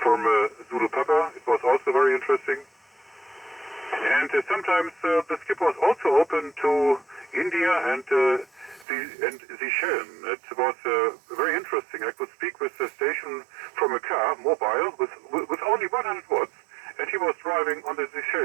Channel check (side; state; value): left; drops out; at 8.8 s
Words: Zulu Papa. It was also very interesting. And sometimes the skip was also open to India and the Seychelles. It was very interesting. I could speak with the station from a car, mobile, with only 100 watts, and he was driving on the